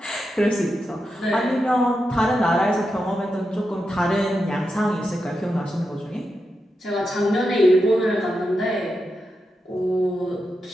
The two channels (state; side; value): normal; both; correlation 0.87